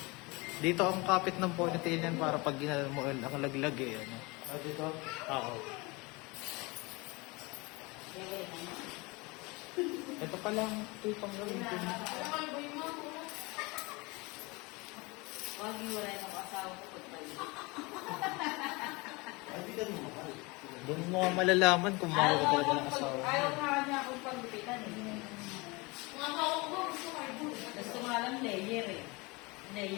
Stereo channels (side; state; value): right; quieter; 25.6 dB